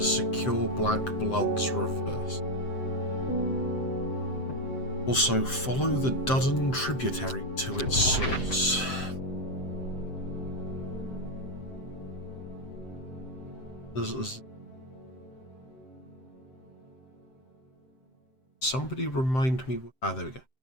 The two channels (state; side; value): late; right; 7.7 ms